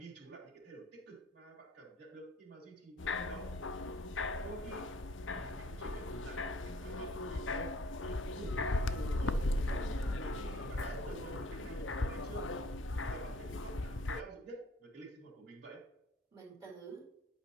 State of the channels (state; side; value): normal; both; correlation 0.57